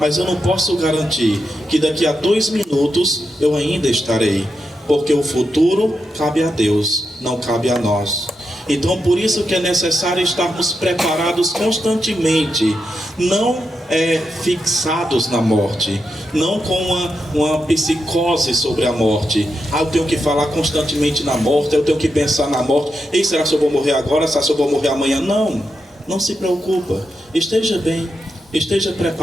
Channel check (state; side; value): normal; both; correlation 0.86